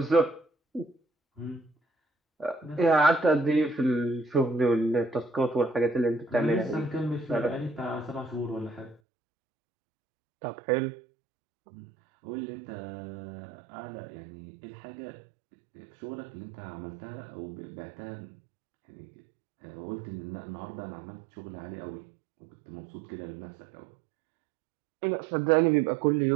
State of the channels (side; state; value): left; drops out; at 9.0 s